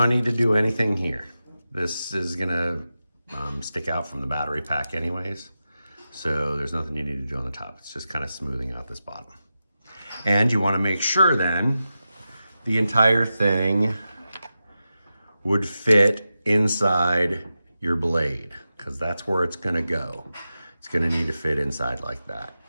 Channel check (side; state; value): both; inverted; correlation -0.92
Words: need to do anything here. This is gonna stick out from the battery pack anyways. So there's nothing you need to do on the top. It's just kind of smoothing out this bottom. And you wanna make sure then the entire thing would fit inside your blade, because that's where it's gonna go. It's gonna need to fit inside like that.